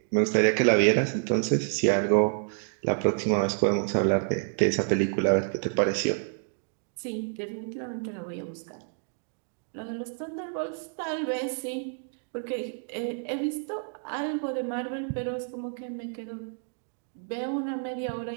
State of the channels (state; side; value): silent; left; 56 dB below the other